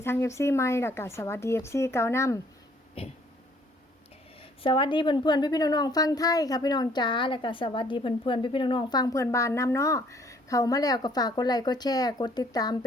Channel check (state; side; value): normal; both; correlation 0.61